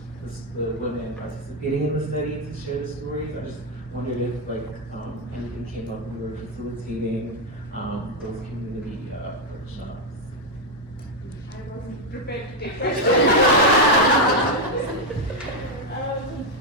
women participating in the study to share the stories? I just wondered if anything came up when we were facilitating those community workshops. I wasn't prepared to take questions.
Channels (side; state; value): both; normal; correlation 0.04